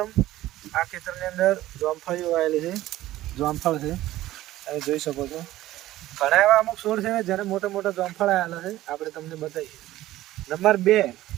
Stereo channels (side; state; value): left; quieter; 15.4 dB